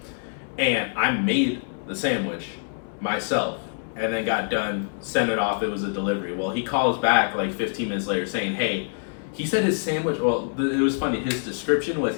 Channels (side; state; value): right; silent; 62 dB below the other